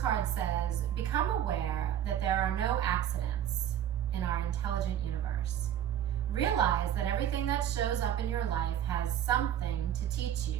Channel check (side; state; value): left; quieter; 10.5 dB